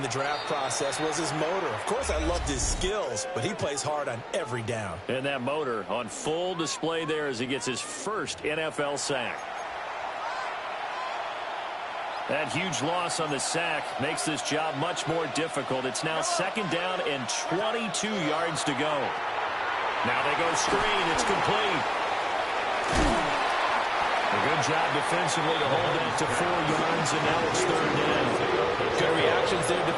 the draft process was his motor. Of course, I loved his skills, but he plays hard on every down. And that motor on full display there as he gets his first NFL sack. That huge loss on the sack makes this job much more difficult. It's now 2nd down and 22 yards to go. Now they go screen. It's complete. A good job defensively to hold that to 4 yards, and now it's 3rd down. Good reactions there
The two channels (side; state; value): both; identical; correlation 1.00